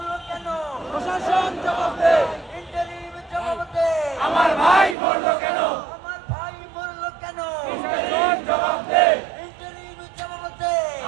কেন প্রশাসন জবাব দে ইন্টারিম জবাব দে আমার ভাই মরলো কেন আমার ভাই বলল কেন প্রশাসন জবাব দে ইন্টারিম জবাব দে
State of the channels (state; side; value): drops out; left; at 5.0 s